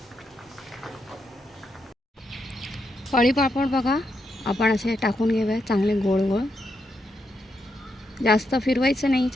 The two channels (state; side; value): normal; both; correlation 0.82